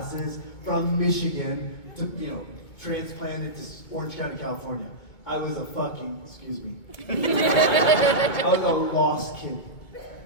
from Michigan to, you know, transplanted to Orange County, California. I was a fucking, excuse me. I was a lost kid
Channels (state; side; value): late; right; 2.2 ms